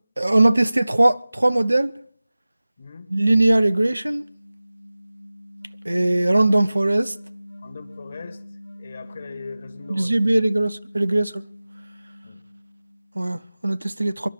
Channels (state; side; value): inverted; both; correlation -0.98